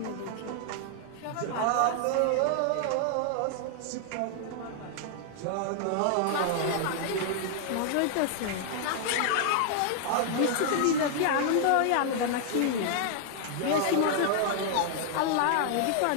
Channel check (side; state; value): both; different; correlation 0.00